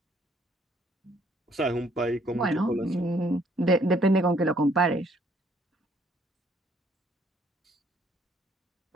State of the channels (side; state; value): both; normal; correlation 0.65